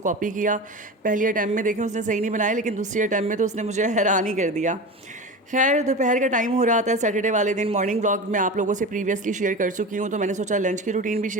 किया। पहली अटैम्प्ट में देखें उसने सही नहीं बनाया, लेकिन दूसरी अटैम्प्ट में तो उसने मुझे हैरान ही कर दिया। खैर दोपहर का टाइम हो रहा था सैटरडे वाले दिन। मॉर्निंग व्लॉग मैं आप लोगों से प्रीवियसली शेयर कर चुकी हूँ, तो मैंने सोचा लंच की रूटीन भी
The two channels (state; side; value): normal; both; correlation 0.28